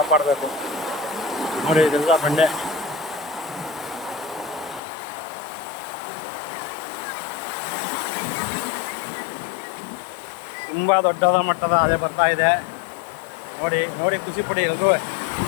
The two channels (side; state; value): right; drops out; at 4.8 s